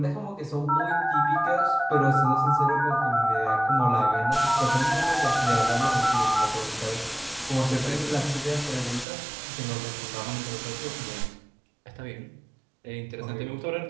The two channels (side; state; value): left; drops out; at 9.1 s